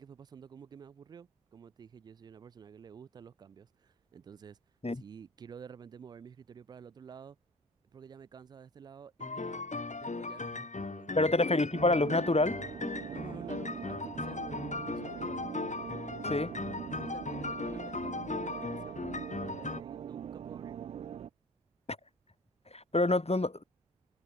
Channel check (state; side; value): normal; both; correlation 0.39